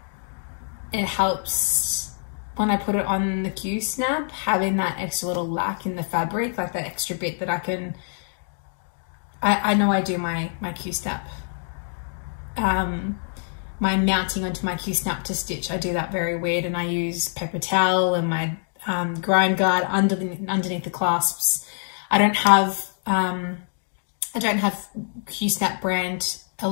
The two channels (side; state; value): right; silent; digital silence